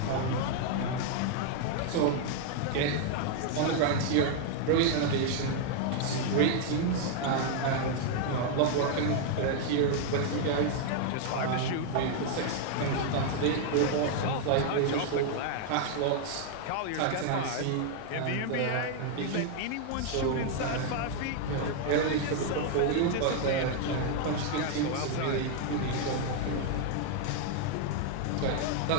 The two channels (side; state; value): both; different; correlation 0.00